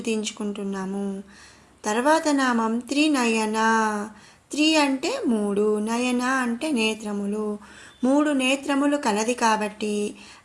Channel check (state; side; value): identical; both; correlation 1.00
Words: తర్వాత నామం త్రినయన. త్రి అంటే 3, నయన అంటే నేత్రములు. 3 నేత్రములు కలది కాబట్టి